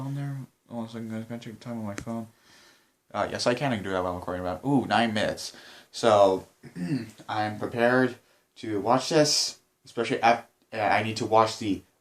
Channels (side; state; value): both; identical; correlation 1.00